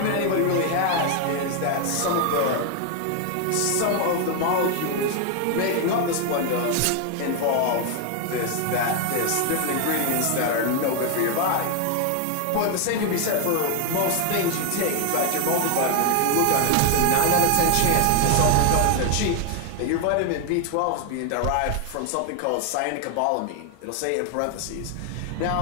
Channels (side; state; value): both; different; correlation 0.00